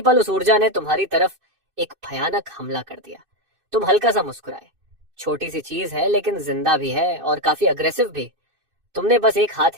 पल उस ऊर्जा ने तुम्हारी तरफ एक भयानक हमला कर दिया। तुम हल्का सा मुस्कुराए। छोटी सी चीज है, लेकिन जिंदा भी है और काफी अग्रेसिव भी। तुमने बस एक हाथ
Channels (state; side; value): late; left; 2.6 ms